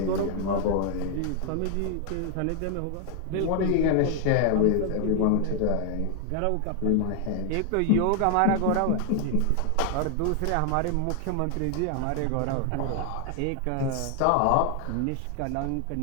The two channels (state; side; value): different; both; correlation 0.00